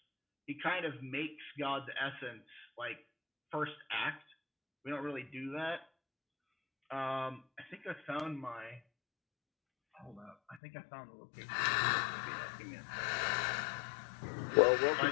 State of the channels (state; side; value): drops out; right; at 10.6 s